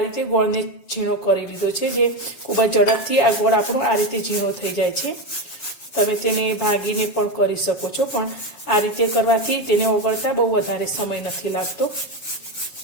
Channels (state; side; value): late; right; 7.4 ms